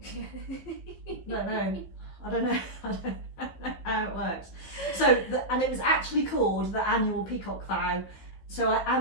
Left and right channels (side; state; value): right; late; 15 ms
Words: Don't know. I don't know. I don't know how it works. So, and it was actually called the Annual Peacock Vow. So I